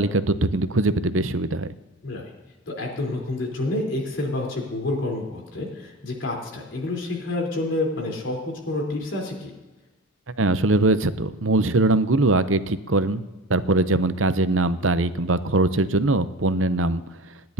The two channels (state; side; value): normal; both; correlation 0.33